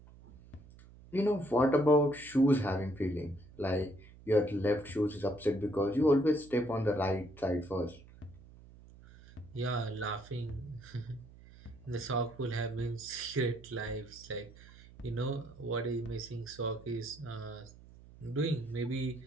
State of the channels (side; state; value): right; noise; hum, 21 dB below the sound